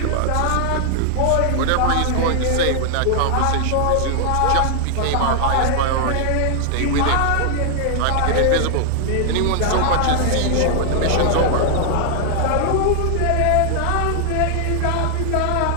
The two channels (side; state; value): both; different; correlation 0.00